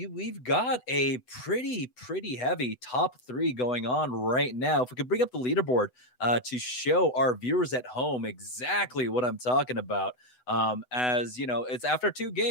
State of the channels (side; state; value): right; late; 8.0 ms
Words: got a pretty heavy top 3 going on right now. If we could bring up the leaderboard to show our viewers at home exactly what I'm talking about. As you know, it's after 2